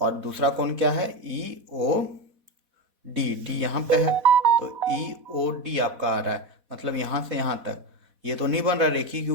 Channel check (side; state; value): left; late; 4.1 ms